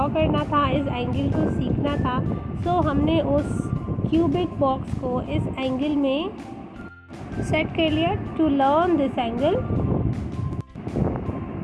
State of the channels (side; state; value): both; identical; correlation 1.00